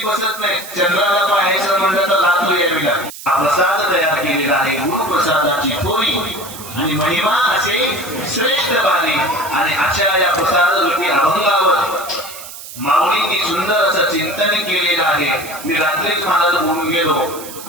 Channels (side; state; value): right; noise; hiss, 13 dB below the sound